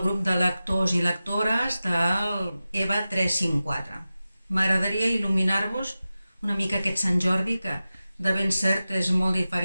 grup de lectors i lectores del EVA 354. M'agradaria il·luminar-vos una mica aquest Sant Jordi, que de ben cert és molt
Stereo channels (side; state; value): both; inverted; correlation -0.95